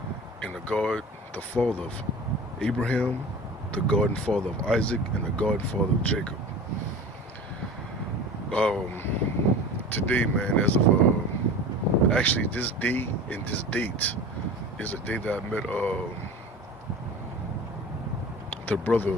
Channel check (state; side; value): normal; both; correlation 0.36